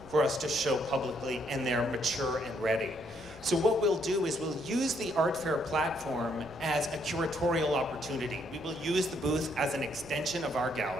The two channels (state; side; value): noise; right; rumble, 22 dB below the sound